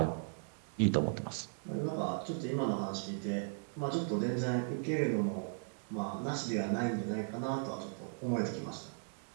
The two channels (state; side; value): silent; left; digital silence